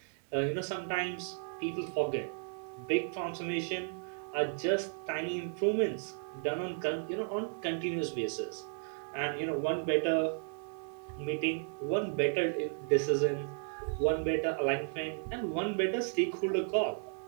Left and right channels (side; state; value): left; silent; 55 dB below the other